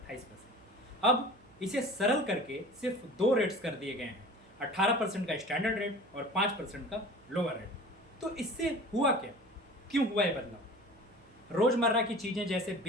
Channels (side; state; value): right; noise; hum, 27 dB below the sound